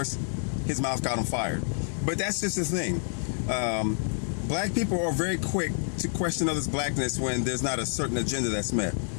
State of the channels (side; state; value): right; silent; 59 dB below the other